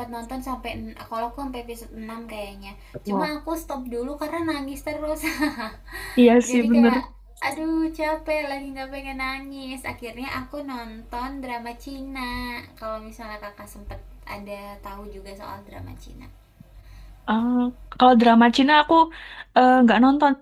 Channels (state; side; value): identical; both; correlation 1.00